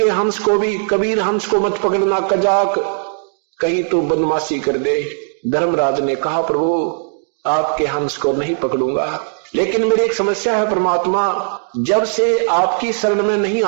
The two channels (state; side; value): silent; left; digital silence